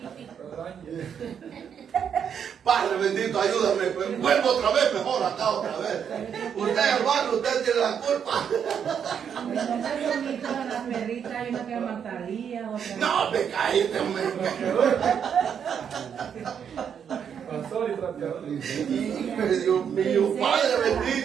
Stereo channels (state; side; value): quieter; left; 7.9 dB